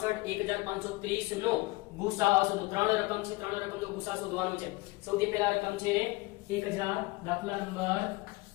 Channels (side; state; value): right; quieter; 22.1 dB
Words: 1530 નો ગુસાઅ શોધો. ત્રણ રકમ છે, ત્રણ રકમનો ગુસાઅ શોધવાનો છે. સૌથી પહેલા રકમ છે 1000, દાખલા નંબર